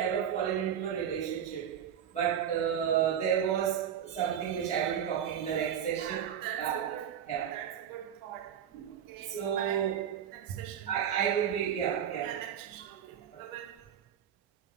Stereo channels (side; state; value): left; quieter; 9.1 dB